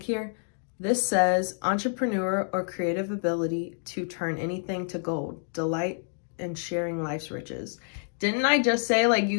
here. This says entrepreneur or creative ability to turn anything to gold, delight in sharing life's riches. Didn't I just say, like,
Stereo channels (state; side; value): silent; right; 59 dB below the other